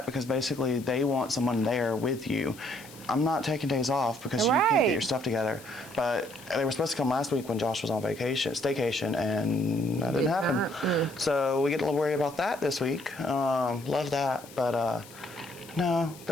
because basically they want someone there with you. I'm not taking days off because you can't get your stuff together. But they were supposed to come last week when Josh was on staycation, and that didn't happen. So we get to worry about that this week. Love that. But no,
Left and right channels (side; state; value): left; noise; hiss, 20 dB below the sound